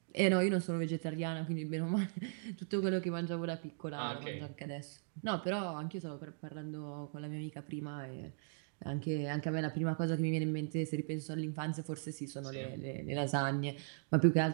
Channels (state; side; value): silent; left; digital silence